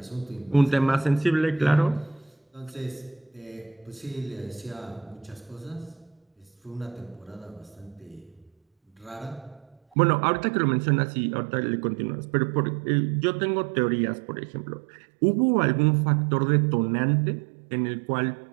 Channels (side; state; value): left; drops out; at 9.8 s